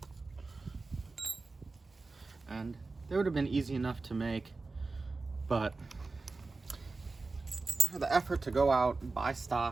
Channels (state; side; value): quieter; left; 3.8 dB